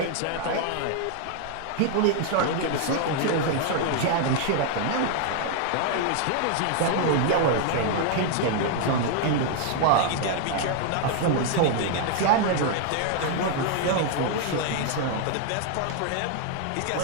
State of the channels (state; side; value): different; both; correlation 0.00